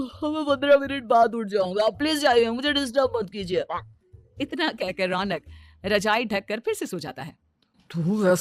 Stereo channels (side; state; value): both; identical; correlation 1.00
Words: 15 मिनट बाद उठ जाऊंगा, आप प्लीज जाइए, मुझे डिस्टर्ब मत कीजिए। इतना कहकर रौनक रजाई ढककर फिर से सो जाता है। तू